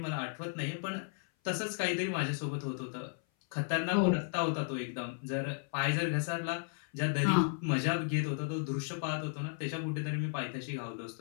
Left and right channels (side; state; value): right; silent; 55 dB below the other